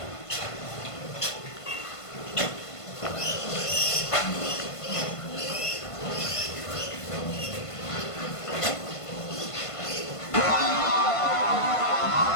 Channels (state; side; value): late; right; 1.5 ms